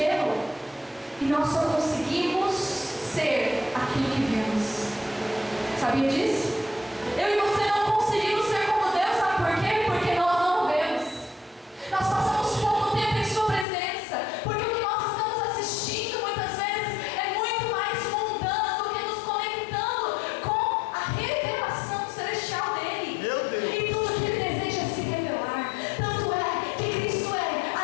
E nós só conseguimos ser aquilo que vemos. Sabia disso? Eu e você não conseguimos ser como Deus, sabe por quê? Porque nós não o vemos. Nós passamos pouco tempo em sua presença, porque o que nós estamos assistindo muitas vezes é muito mais mundano do que nos conectando com a revelação celestial dele. Meu Deus. E tudo que ele deseja se revelar. Tanto é que Cristo é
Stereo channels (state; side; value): drops out; right; at 13.7 s